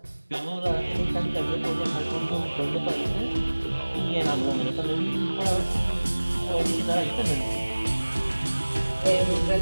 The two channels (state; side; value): inverted; both; correlation -1.00